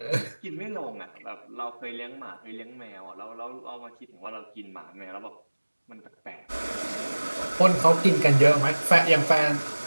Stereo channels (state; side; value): inverted; both; correlation -1.00